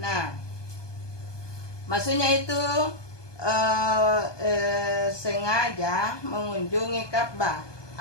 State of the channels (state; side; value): late; right; 1.2 ms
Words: maksudnya itu sengaja mengunjungi Ka'bah